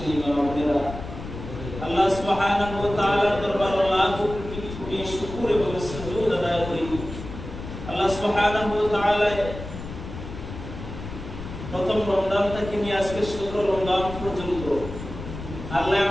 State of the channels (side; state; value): left; noise; rumble, 10 dB below the sound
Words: মা বোনেরা, আল্লাহ সুবহানাহু ওয়া তাআলার দরবারে লাখ কোটি শুকর এবং সুজুদ আদায় করি। আল্লাহ সুবহানাহু ওয়া তাআলা প্রথম রমজান থেকে নিয়ে আজকে 17 রমজান পর্যন্ত আল্লাহ